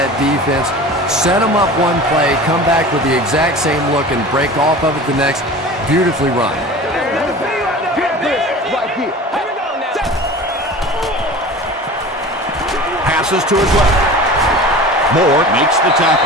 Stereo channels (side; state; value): both; normal; correlation 0.37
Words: defense, set them up one play, come back with the exact same look, and break off of it the next. Beautifully run. Passes to his left. Moore Makes the